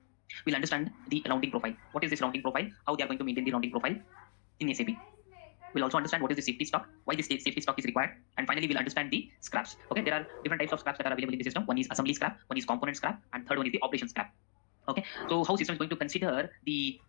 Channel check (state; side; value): silent; right; digital silence